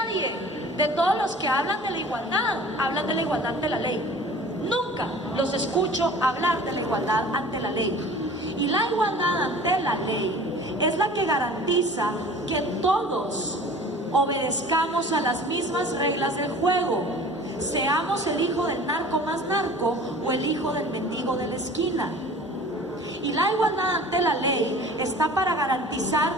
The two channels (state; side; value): normal; both; correlation 0.44